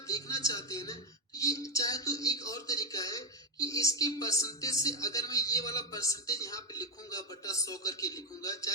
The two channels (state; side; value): normal; both; correlation 0.06